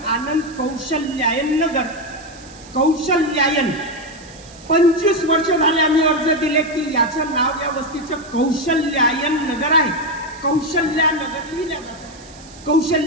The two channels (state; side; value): noise; right; hiss, 21 dB below the sound